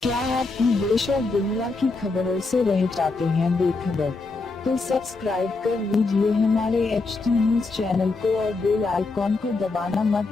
क्या आप देश और दुनिया की खबरों से रह जाते हैं बेखबर? तो सब्सक्राइब कर लीजिए हमारे HT न्यूज चैनल को और बेल आइकॉन को दबाना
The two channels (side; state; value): right; quieter; 3.7 dB